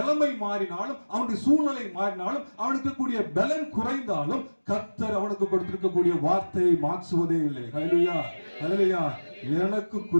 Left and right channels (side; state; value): both; inverted; correlation -1.00